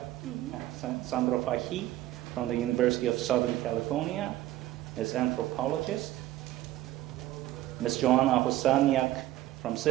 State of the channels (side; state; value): left; quieter; 15.1 dB